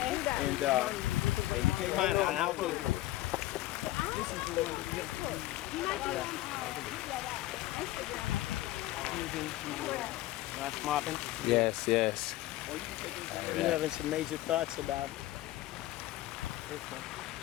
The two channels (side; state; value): right; quieter; 16.2 dB